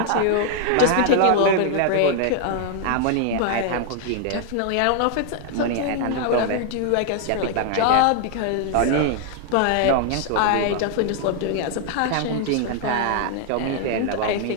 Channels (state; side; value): different; both; correlation 0.00